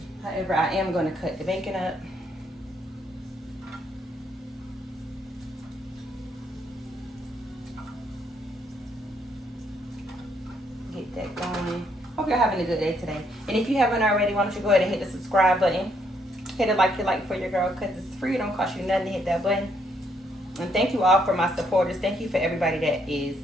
However, I am gonna cut the bacon up. Get that going. Hope you're having a good day today. And if you haven't already, why don't you go ahead and hit the subscribe button. Hit it like you like for your girl, because it's free. It don't cost you nothing to hit that button. And thank you all for my supporters. Thank you for everybody that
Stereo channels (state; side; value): normal; both; correlation 0.72